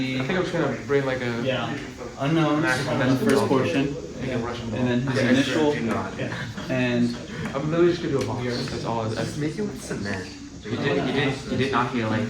I think I'm just gonna bring like a unknowns in the first portion, and then his initial, and I'm literally just gonna do a box. That's all. That's Make it with cement. You did not hear like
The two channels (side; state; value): both; identical; correlation 1.00